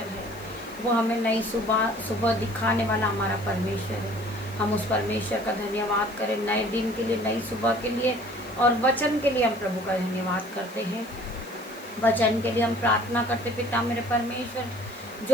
है। वो हमें नई सुबह दिखाने वाला हमारा परमेश्वर है। हम उस परमेश्वर का धन्यवाद करें नए दिन के लिए, नई सुबह के लिए और वचन के लिए हम प्रभु का धन्यवाद करते हैं। वचन के लिए हम प्रार्थना करते। पिता मेरे परमेश्वर,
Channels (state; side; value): noise; left; hiss, 22 dB below the sound